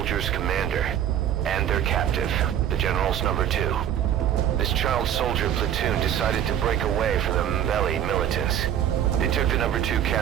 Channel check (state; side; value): quieter; left; 10.2 dB